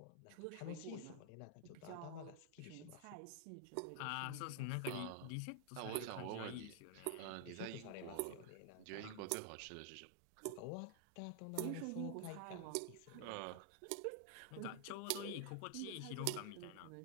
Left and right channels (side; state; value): both; different; correlation -0.01